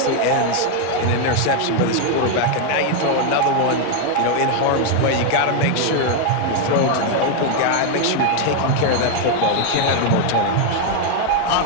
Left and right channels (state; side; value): different; both; correlation 0.01